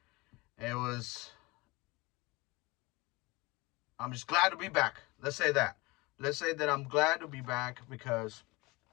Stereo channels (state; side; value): quieter; right; 23.8 dB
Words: it was. I'm just glad to be back. Let's say that. Let's say that I'm glad to be back because